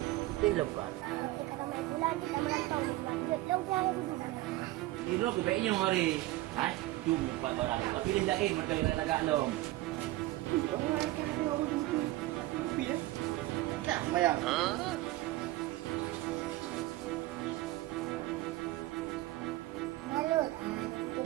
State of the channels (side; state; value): left; quieter; 17.8 dB